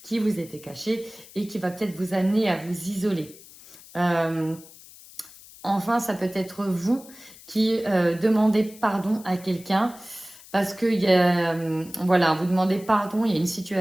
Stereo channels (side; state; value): left; noise; hiss, 20 dB below the sound